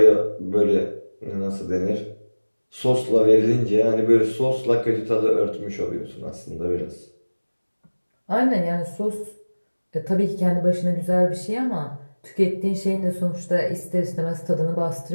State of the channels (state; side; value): inverted; both; correlation -1.00